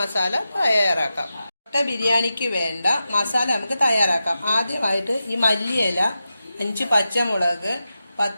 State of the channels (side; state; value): both; inverted; correlation -0.91